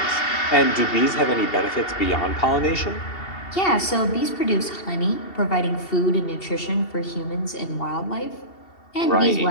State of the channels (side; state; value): right; late; 2.7 ms